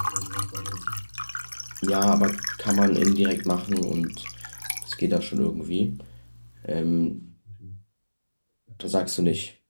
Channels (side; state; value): both; inverted; correlation -1.00